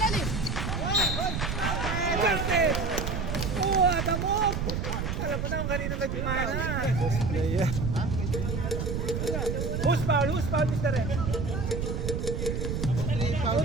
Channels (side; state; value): right; noise; rumble, 2 dB below the sound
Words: Garnet. What a move. Alam mo na kung kanino nagmana. Player. Who's foul, Mr. Red?